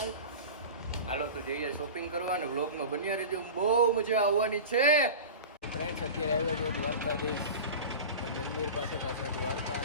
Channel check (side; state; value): both; inverted; correlation -0.32